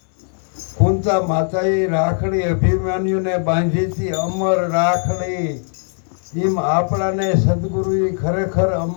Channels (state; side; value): silent; right; 61 dB below the other